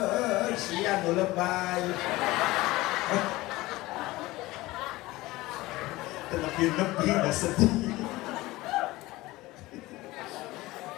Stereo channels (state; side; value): quieter; right; 19.3 dB